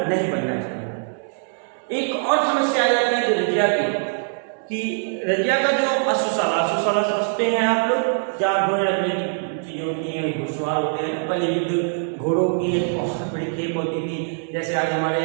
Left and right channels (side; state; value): left; silent; digital silence